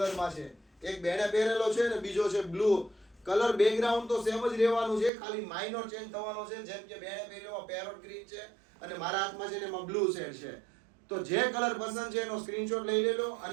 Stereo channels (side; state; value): left; drops out; at 5.1 s